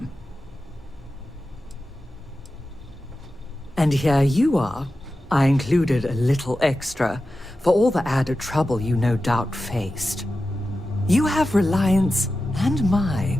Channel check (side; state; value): both; normal; correlation 0.93